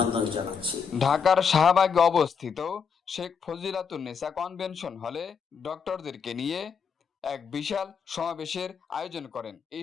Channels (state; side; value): quieter; right; 6.4 dB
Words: জানাচ্ছি। ঢাকার শাহবাগে অবস্থিত শেখ ফজিলাতুন্নেসা কনভেনশন হলে ডক্টরদেরকে নিয়ে এক বিশাল সমাবেশের আয়োজন করেন।